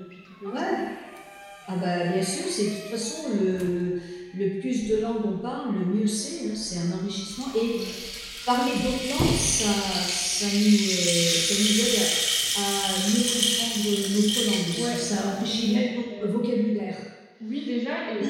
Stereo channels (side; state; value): both; identical; correlation 1.00